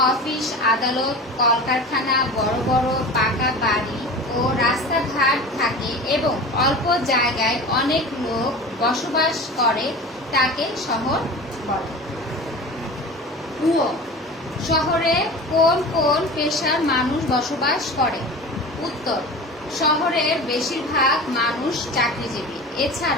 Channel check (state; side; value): normal; both; correlation 0.34